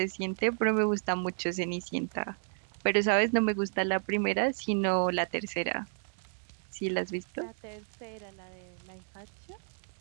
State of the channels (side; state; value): left; silent; 56 dB below the other